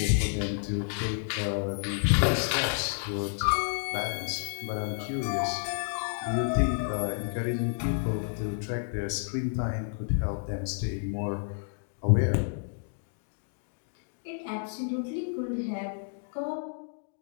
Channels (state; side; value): silent; right; digital silence